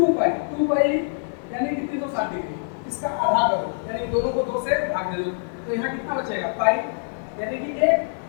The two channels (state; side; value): silent; right; digital silence